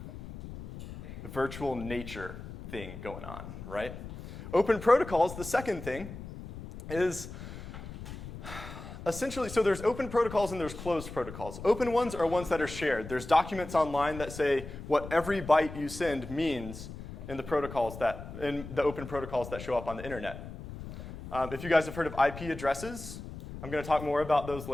virtual nature thing going on, right? Open protocols, the second thing, is essentially, so there's open protocols and there's closed protocols. Open ones are ones that are shared. There's documents online that say what every byte you send means in the open protocols that show up on the internet. If you guys have heard of IP addresses, I'm going to talk more about those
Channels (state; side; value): noise; left; rumble, 11 dB below the sound